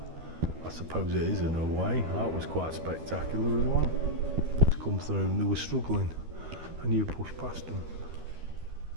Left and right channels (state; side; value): late; left; 13 ms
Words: I suppose it is in a way. That was quite spectacular as well. To come through and they were struggling and you pushed past them.